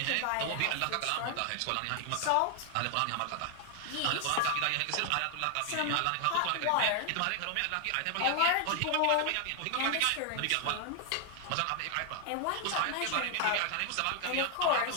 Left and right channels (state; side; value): different; both; correlation 0.00